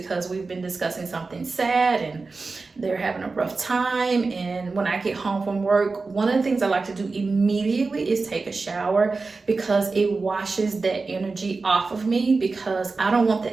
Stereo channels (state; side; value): quieter; left; 4.0 dB